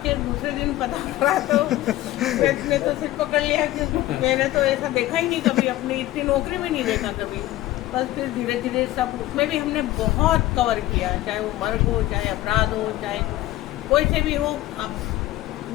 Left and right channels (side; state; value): right; quieter; 16.0 dB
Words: दूसरे दिन पता पड़ा तो मैं तो सिर पकड़ लिया कि मैंने तो ऐसा देखा ही नहीं कभी, अपनी इतनी नौकरी में नहीं देखा कभी। बस फिर धीरे धीरे सब उसमें भी हमने बहुत कवर किया, चाहे वो मर्ग हो, चाहे अपराध हो, चाहे कोई से भी हो। अब